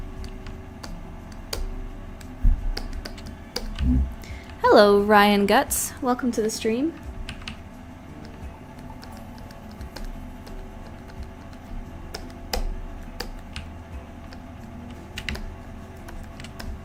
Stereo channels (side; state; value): both; identical; correlation 1.00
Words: Hello, Ryan Guts. Welcome to the stream.